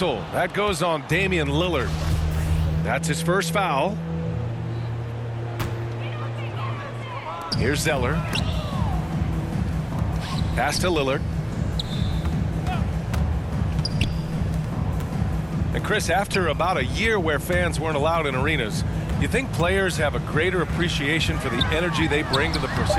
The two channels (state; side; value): identical; both; correlation 1.00